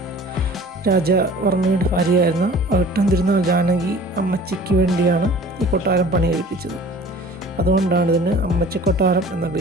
രാജവർമ്മയുടെ ഭാര്യയായിരുന്ന അവിട്ടം തിരുനാൾ ജാനകി അമ്മച്ചിക്ക് വേണ്ടിയാണ് ഈ കൊട്ടാരം പണി കഴിപ്പിച്ചത്. അതുകൊണ്ടാണ് ഇതിന് അമ്മച്ചി കൊട്ടാരം എന്ന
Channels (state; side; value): normal; both; correlation 0.46